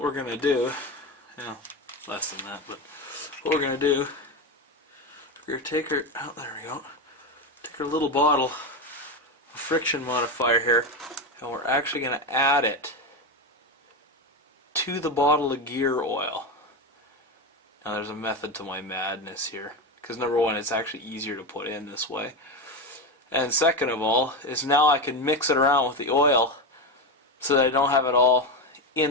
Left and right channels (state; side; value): normal; both; correlation 0.15